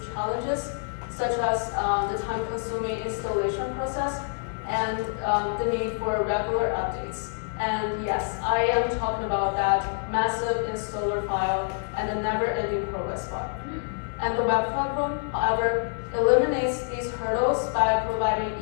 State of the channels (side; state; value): right; silent; digital silence